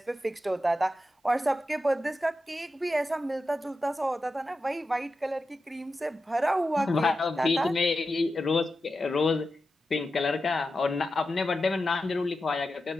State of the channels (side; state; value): both; normal; correlation 0.91